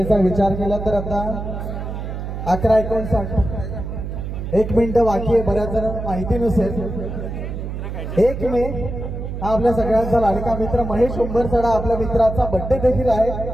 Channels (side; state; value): right; noise; hum, 6 dB below the sound